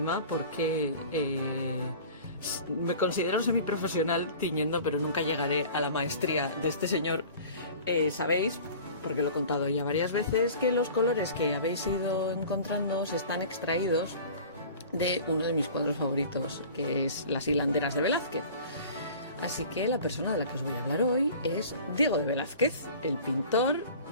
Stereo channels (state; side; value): inverted; both; correlation -0.42